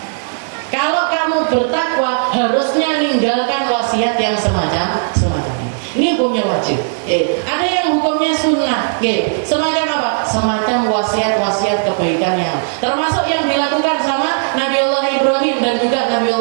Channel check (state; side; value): silent; left; digital silence